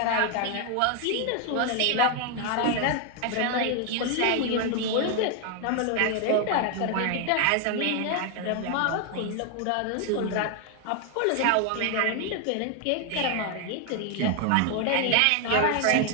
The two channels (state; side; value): different; both; correlation 0.01